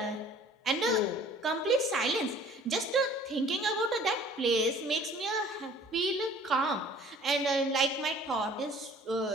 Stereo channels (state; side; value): normal; both; correlation 0.51